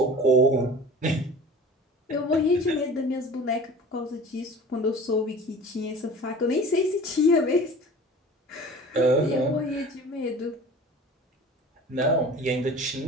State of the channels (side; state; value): both; normal; correlation 0.41